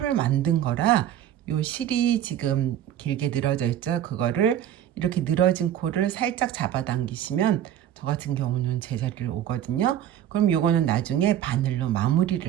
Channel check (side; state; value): left; quieter; 11.1 dB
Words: 만든 거라 요 실이 지금 길게 늘어져 있죠. 그거를 이렇게 늘어진 코를 살짝 잡아당기시면 저 같은 경우는 제자리를 오거든요. 그럼 요거는 나중에 바늘로